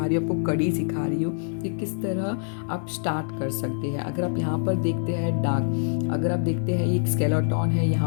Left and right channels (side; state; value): right; silent; 62 dB below the other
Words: रही हूँ आपको, कड़ी सिखा रही हूँ कि किस तरह आप स्टार्ट कर सकते हैं। अगर आप यहाँ पर देखते हैं डार्क, अगर आप देखते हैं एक स्केलेटन है,